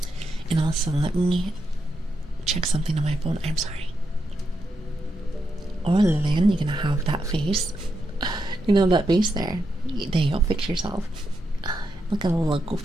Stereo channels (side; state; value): both; normal; correlation 0.83